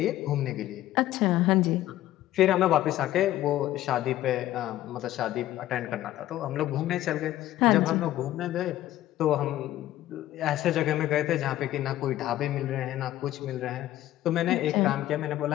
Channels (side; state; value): right; quieter; 14.1 dB